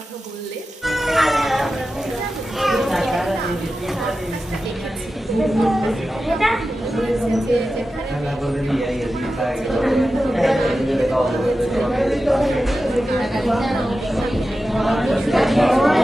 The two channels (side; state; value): both; normal; correlation 0.93